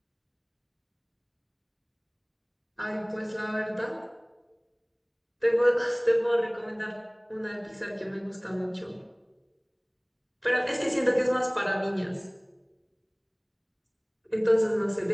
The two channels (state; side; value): identical; both; correlation 1.00